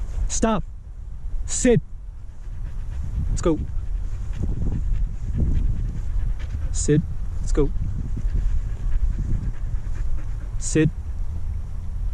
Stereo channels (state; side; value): identical; both; correlation 1.00